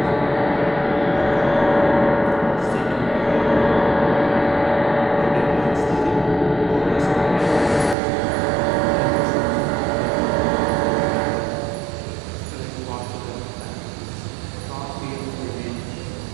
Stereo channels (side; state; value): left; drops out; at 8.0 s